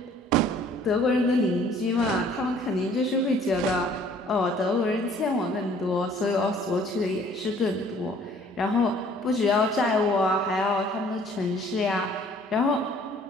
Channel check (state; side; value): normal; both; correlation 0.56